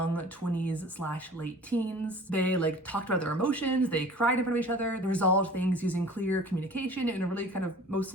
20s/late teens. They like talked about their emotions, they cried in front of each other, they resolved things using clear communication in a really kind of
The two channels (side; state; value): both; normal; correlation 0.44